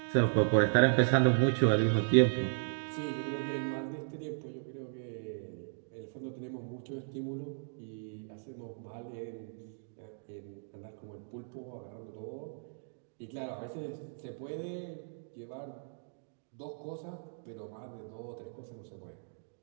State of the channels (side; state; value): left; silent; digital silence